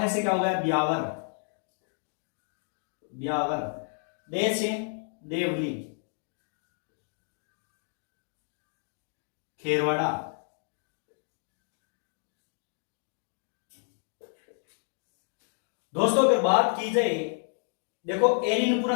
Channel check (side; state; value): right; silent; 57 dB below the other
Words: से क्या हो गया, ब्यावर, ब्यावर। दे से देवली, खेरवाड़ा। दोस्तों अगर बात की जाए, देखो